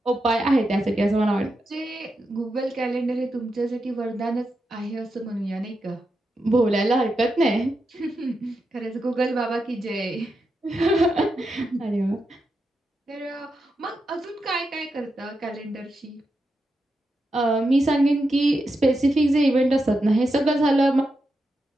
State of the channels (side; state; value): both; normal; correlation 0.86